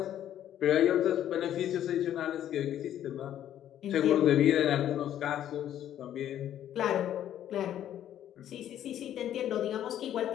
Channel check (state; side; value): quieter; right; 11.1 dB